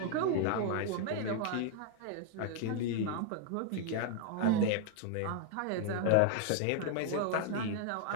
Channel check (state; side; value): different; both; correlation 0.00